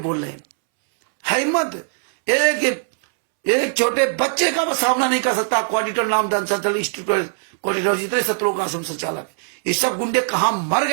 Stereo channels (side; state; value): left; silent; 66 dB below the other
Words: रहे हैं। हिम्मत एक छोटे बच्चे का सामना नहीं कर सकता। कोऑर्डिनेटर नामदान संचालक इंस्टीट्यूट कोऑर्डिनेटर, जितने सत्रों का आश्रम संचालक, ये सब गुंडे कहां मर